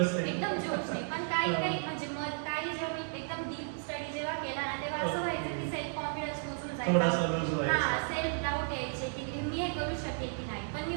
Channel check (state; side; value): silent; left; 55 dB below the other